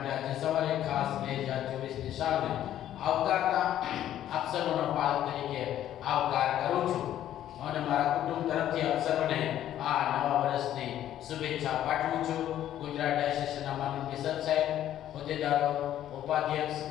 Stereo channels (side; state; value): right; quieter; 11.8 dB